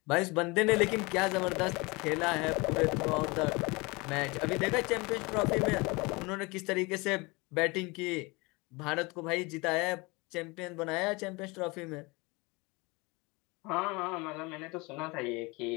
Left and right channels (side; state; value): right; quieter; 25.9 dB